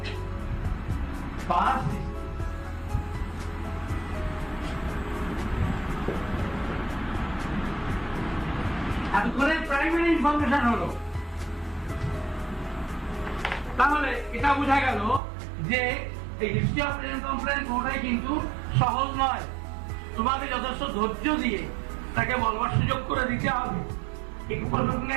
পাস্ট। এতক্ষণে প্রাইমারি ইনফরমেশন হলো। তাহলে এটা বোঝা গেল যে এই হিস্ট্রি অফ প্রেজেন্ট কমপ্লেন কোনটাই কিন্তু সহজ নয়। তোমাকে যথেষ্ট ধৈর্য দিয়ে তাকে বলবার সুযোগ করে দিতে হবে। এই প্রসঙ্গে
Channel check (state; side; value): drops out; left; at 15.2 s